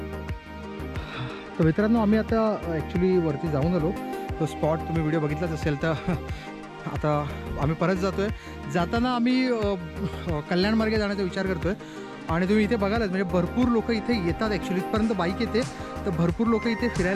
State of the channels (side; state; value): both; identical; correlation 1.00